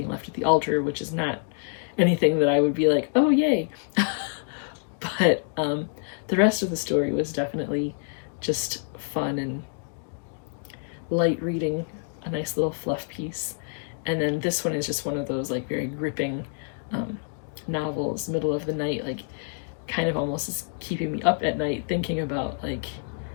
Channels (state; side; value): silent; right; digital silence